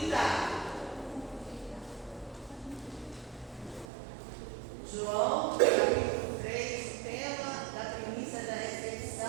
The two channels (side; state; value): left; drops out; at 3.9 s